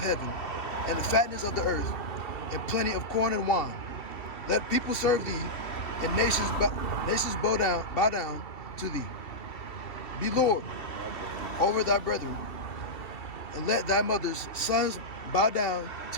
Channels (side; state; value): right; late; 2.7 ms